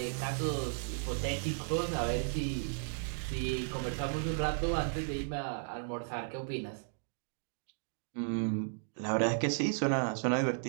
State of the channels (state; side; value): silent; left; digital silence